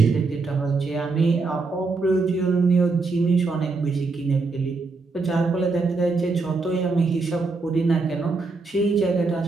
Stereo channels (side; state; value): left; quieter; 3.9 dB